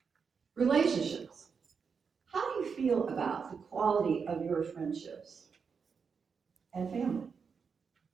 Relationships. How do you feel about the quality of your friendships and family?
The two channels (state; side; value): quieter; left; 5.9 dB